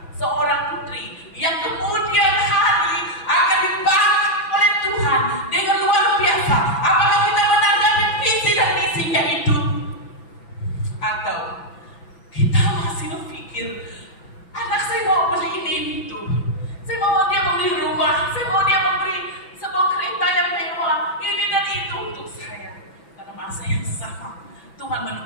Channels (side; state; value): right; late; 6.0 ms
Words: seorang putri yang kemudian hari akan dipakai oleh Tuhan dengan luar biasa. Apakah kita menanggapi visi dan misinya itu? Atau kita masih berpikir, anak saya mau beli ini itu, saya mau dia membeli rumah, saya mau dia memberi sebuah kereta yang mewah, ini dan itu untuk saya. Pada masa yang sama, Tuhan